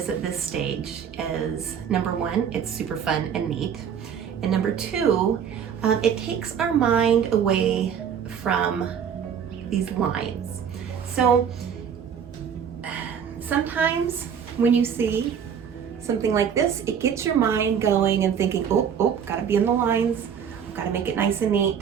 at this stage is, number one, it's super fun and neat. And number two, it takes our mind away from these lines. So sometimes when you see something like this, it gets your mind going and thinking, oh, gotta be in the lines, gotta make it nice and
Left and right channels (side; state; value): left; quieter; 7.8 dB